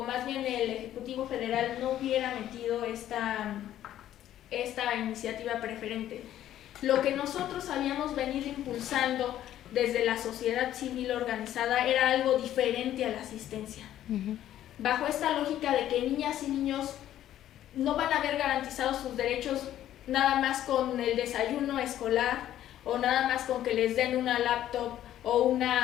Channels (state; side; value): quieter; right; 12.2 dB